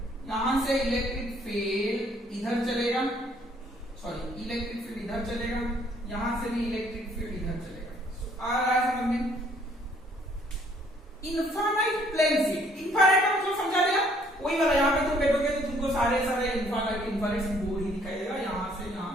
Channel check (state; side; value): normal; both; correlation 0.63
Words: यहां से इलेक्ट्रिक फील्ड इधर चलेगा, सॉरी इलेक्ट्रिक फील्ड इधर चलेगा, यहां से भी इलेक्ट्रिक फील्ड इधर चलेगा। आ रहा है समझ में? इनफाइनाइट प्लेन शीट, इनफाइनाइट का मतलब समझा दिया, वही वाला। यहां पे तुम बैठोगे तो तुमको सारे इनफाइनाइट बोर्ड ही दिखाई देगा, यहां से